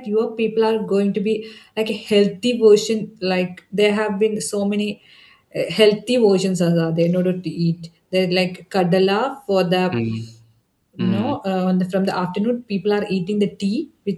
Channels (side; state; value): both; identical; correlation 1.00